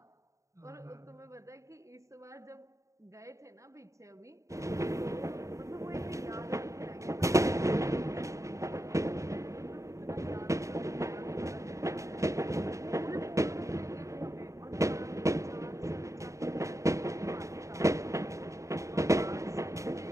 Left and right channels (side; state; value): left; late; 0.15 ms